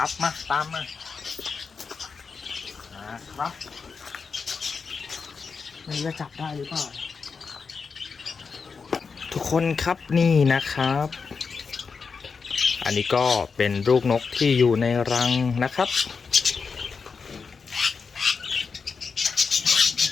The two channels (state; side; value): quieter; right; 5.2 dB